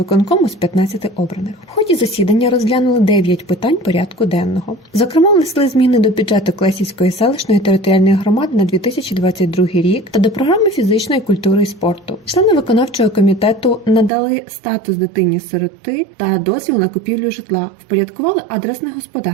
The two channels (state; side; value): drops out; left; at 14.1 s